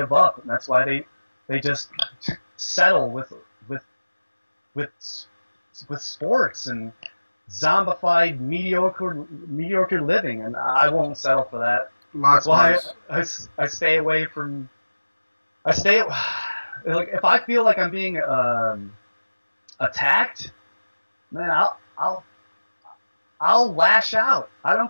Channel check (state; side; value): inverted; both; correlation -1.00